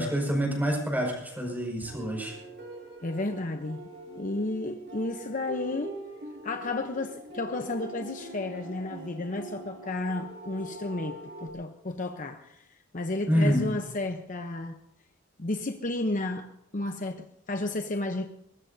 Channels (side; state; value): both; normal; correlation 0.60